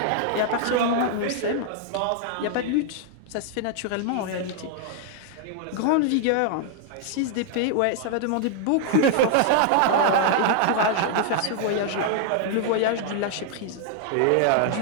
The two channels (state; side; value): different; both; correlation 0.00